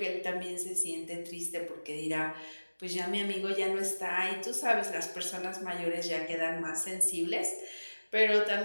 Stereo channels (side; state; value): both; inverted; correlation -1.00